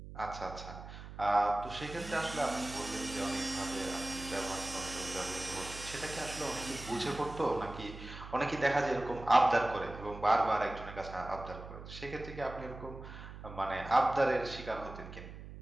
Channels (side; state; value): right; noise; hum, 13 dB below the sound